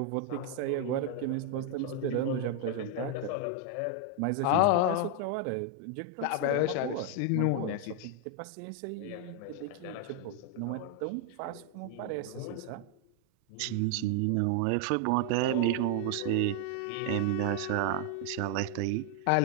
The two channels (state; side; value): different; both; correlation 0.00